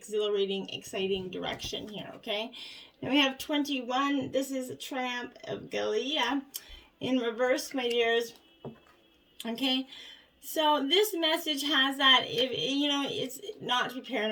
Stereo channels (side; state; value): both; identical; correlation 1.00